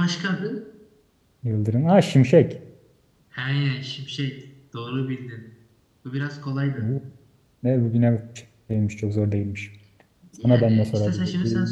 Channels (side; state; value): both; identical; correlation 1.00